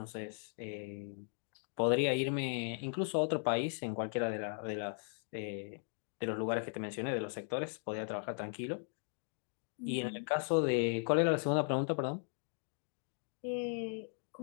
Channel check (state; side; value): silent; right; 53 dB below the other